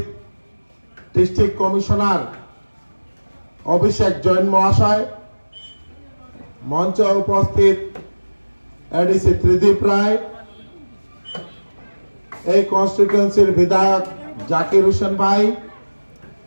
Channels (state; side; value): inverted; both; correlation -1.00